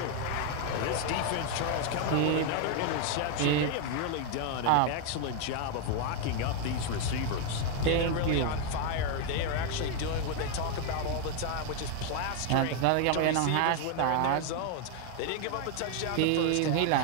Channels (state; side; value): different; both; correlation 0.01